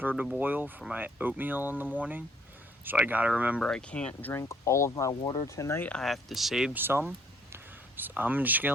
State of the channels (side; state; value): both; normal; correlation 0.64